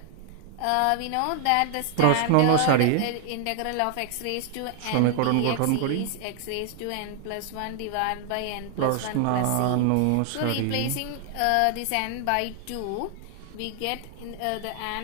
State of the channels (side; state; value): both; different; correlation 0.00